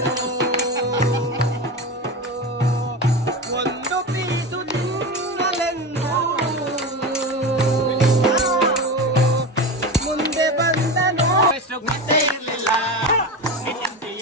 ಒಂದು ಪೀಸು ತಿನ್ನಲೆಂದು ಮುಂದೆ ಬಂದನು ಗೊತ್ತೇ ಇರಲಿಲ್ಲ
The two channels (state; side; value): normal; both; correlation 0.23